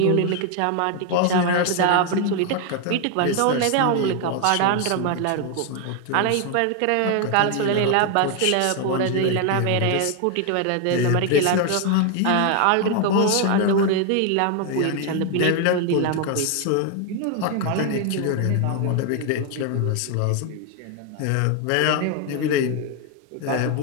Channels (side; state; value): both; different; correlation 0.01